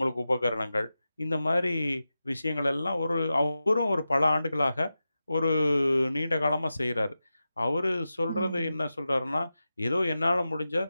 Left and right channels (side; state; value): both; inverted; correlation -0.93